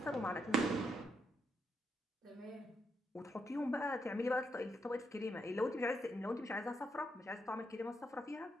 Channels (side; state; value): both; normal; correlation 0.79